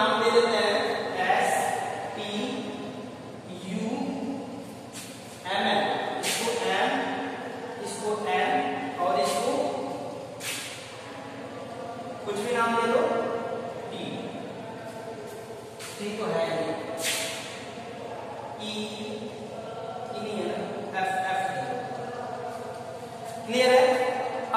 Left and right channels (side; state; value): both; identical; correlation 1.00